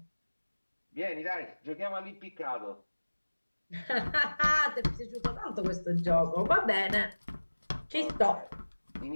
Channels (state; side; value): inverted; both; correlation -1.00